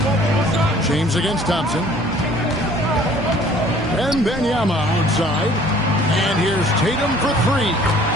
James against Thompson. And Wembanyama outside. And here's Tatum for 3.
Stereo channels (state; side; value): normal; both; correlation 0.54